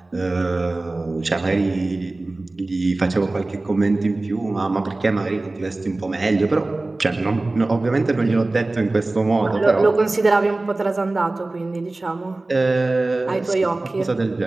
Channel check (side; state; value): left; quieter; 3.0 dB